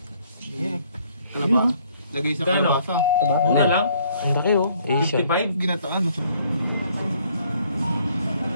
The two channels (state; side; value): inverted; both; correlation -0.63